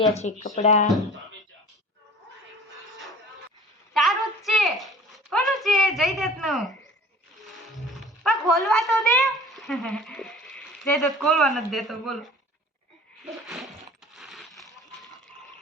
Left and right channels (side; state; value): both; normal; correlation 0.45